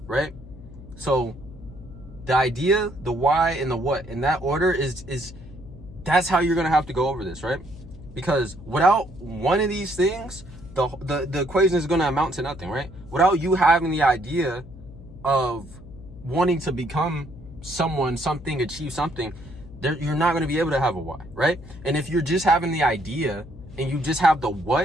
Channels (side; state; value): left; noise; hum, 17 dB below the sound